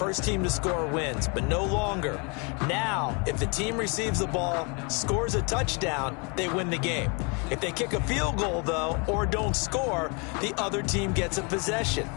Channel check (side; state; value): right; quieter; 33.3 dB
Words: team to score wins, but no longer. Now, if the team receives the ball, scores a touchdown, they win the game. If they kick a field goal, though, or don't score, the other team gets a possession.